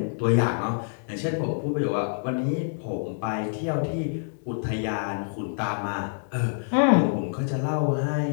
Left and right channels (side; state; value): right; silent; digital silence